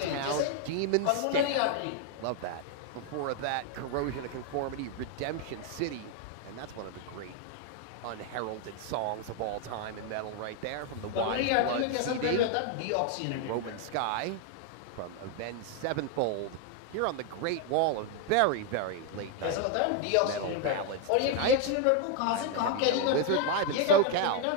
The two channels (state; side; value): different; both; correlation 0.01